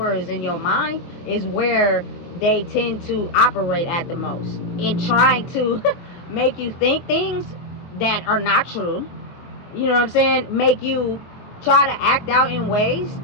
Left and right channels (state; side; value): late; right; 23 ms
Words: is in your mind is where they tend to operate at the most, in trying to make you think things that are not true. You know what I'm saying? Make you try to act out in ways